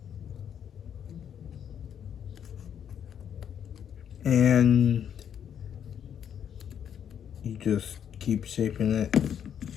And you just keep shaping it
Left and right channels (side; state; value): right; quieter; 8.8 dB